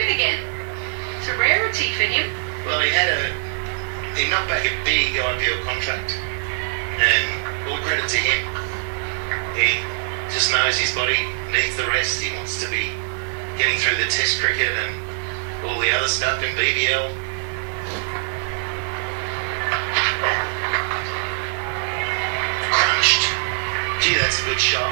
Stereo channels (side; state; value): left; silent; digital silence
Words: again. It's a rarity for him. Well, he knocked back a big IPL contract. And all credit to him. He just knows his body needs the rest. He wants to be getting through the test cricket and all the other stuff in BBL. Crunched. Gee, that's a good